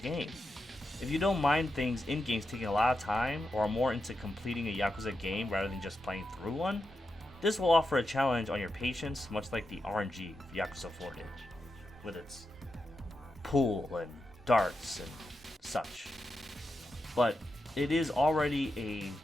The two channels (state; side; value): normal; both; correlation 0.88